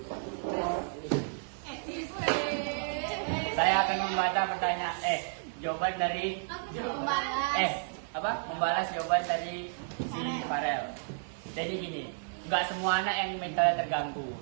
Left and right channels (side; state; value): left; silent; digital silence